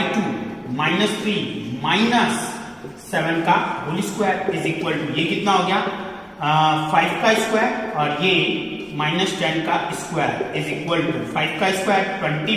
-3 -7 का whole square is equal to ये कितना हो गया 5 का स्क्वायर और ये -10 का स्क्वायर इज इक्वल टू 5 का स्क्वायर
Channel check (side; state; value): both; identical; correlation 1.00